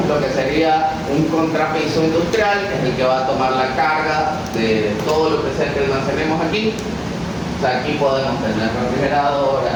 lo que sería un contrapiso industrial, que es el que va a tomar la carga de todo lo que sea que almacenemos aquí. O sea, aquí podemos tener refrigeradoras,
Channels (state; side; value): identical; both; correlation 1.00